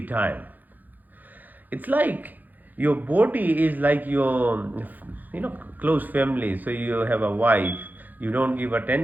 time. It's like your body is like your, close family. So you have a wife, you don't give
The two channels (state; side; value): late; left; 0.084 ms